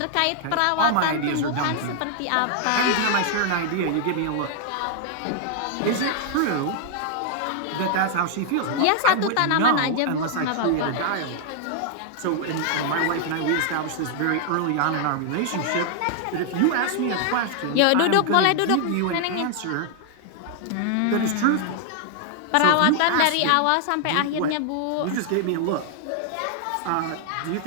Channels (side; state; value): both; different; correlation 0.00